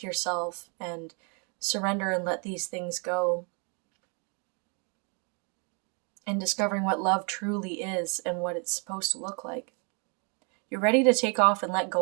yourself and surrender and let these things go, and discovering what love truly is and what it's supposed to look like. You're ready to take off and let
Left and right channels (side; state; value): left; quieter; 36.2 dB